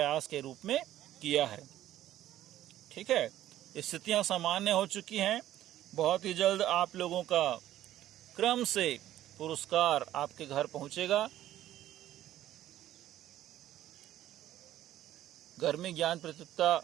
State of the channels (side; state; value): left; quieter; 13.2 dB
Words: के रूप में किया है। ठीक है, स्थितियां सामान्य हो चुकी हैं। बहुत ही जल्द आप लोगों का क्रम से पुरस्कार आपके घर पहुंचेगा। गर्मी ज्ञान प्रतियोगिता